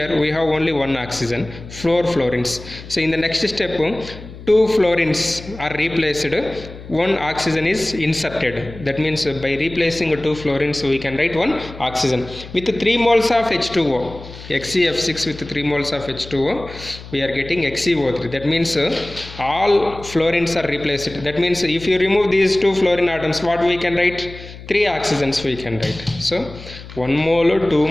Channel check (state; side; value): noise; left; hum, 15 dB below the sound